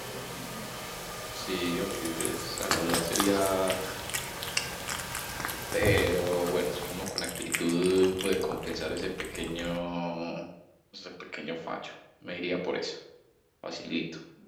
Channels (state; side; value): identical; both; correlation 1.00